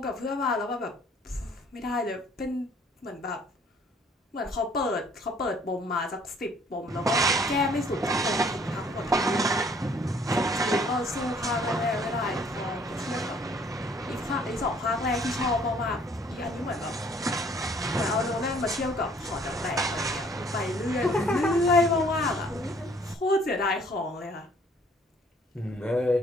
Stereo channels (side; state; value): both; normal; correlation 0.59